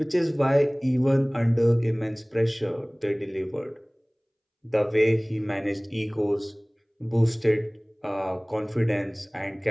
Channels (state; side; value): identical; both; correlation 1.00